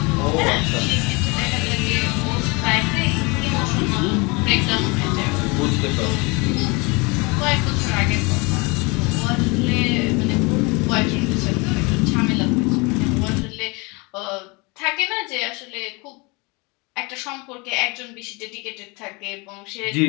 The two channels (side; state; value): right; quieter; 27.7 dB